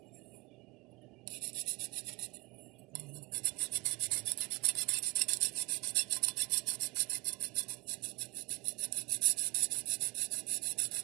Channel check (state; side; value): quieter; left; 26.0 dB